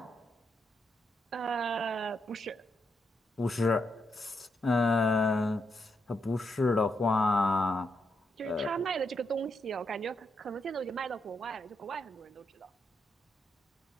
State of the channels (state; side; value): normal; both; correlation 0.81